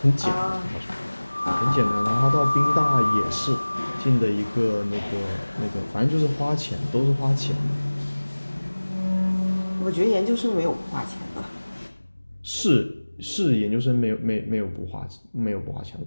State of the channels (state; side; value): inverted; both; correlation -1.00